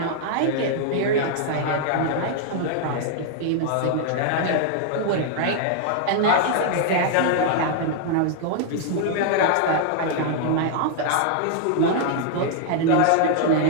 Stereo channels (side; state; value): both; different; correlation -0.01